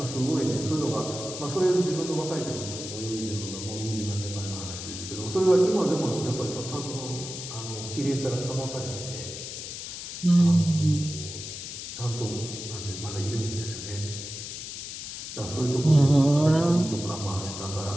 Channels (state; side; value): noise; left; hiss, 8 dB below the sound